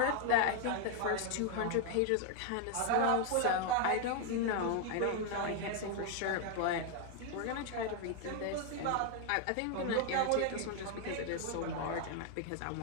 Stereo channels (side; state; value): both; different; correlation 0.00